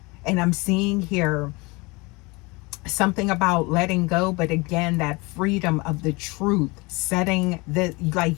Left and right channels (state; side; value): quieter; right; 25.7 dB